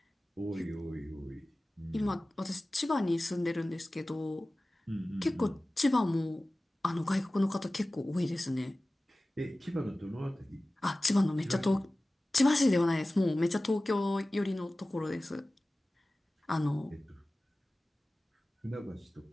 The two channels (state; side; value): normal; both; correlation 0.97